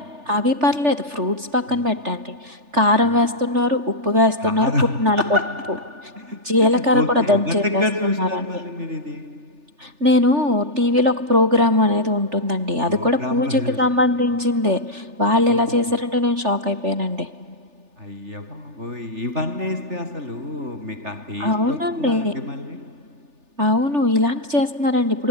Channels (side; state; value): left; late; 3.4 ms